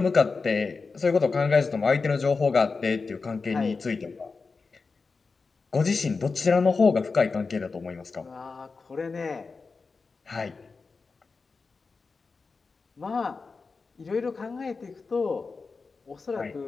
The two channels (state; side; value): quieter; right; 4.4 dB